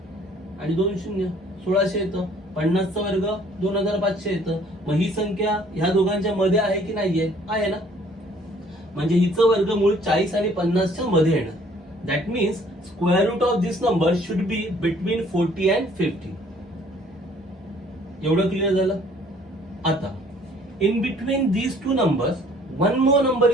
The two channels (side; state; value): both; normal; correlation 0.58